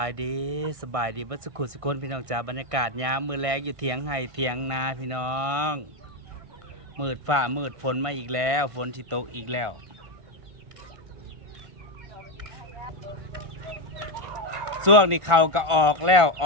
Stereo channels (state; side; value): late; left; 1.4 ms